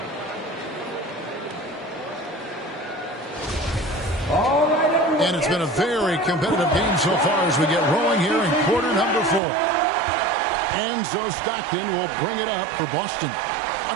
And it's been a very competitive game so far as we get rolling here in quarter number 4. And so Stockton will bring it up for Boston. A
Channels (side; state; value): left; drops out; at 9.4 s